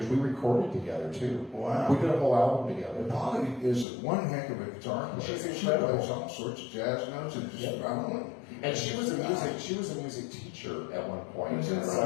We recorded together too. Wow. We did a whole album together. Polly is one heck of a guitar player. She's incredible. She plays all sorts of jazz notes and just I don't know. And she was a music teacher at one point. Is that And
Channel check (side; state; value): right; drops out; at 3.9 s